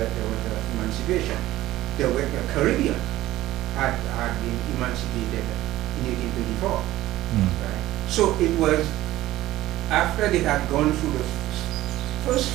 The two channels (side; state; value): left; quieter; 15.9 dB